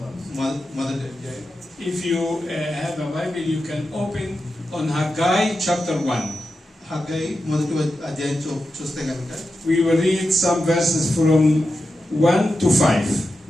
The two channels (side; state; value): both; normal; correlation 0.90